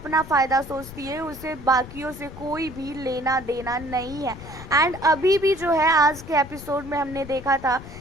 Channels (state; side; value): noise; left; rumble, 15 dB below the sound